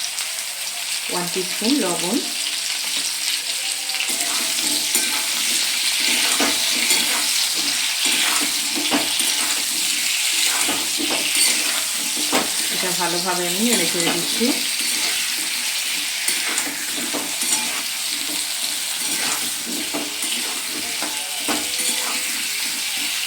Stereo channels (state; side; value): identical; both; correlation 1.00